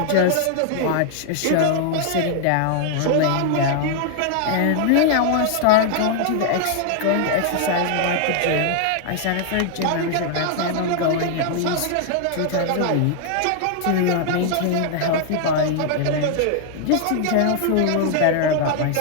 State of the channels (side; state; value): both; different; correlation 0.00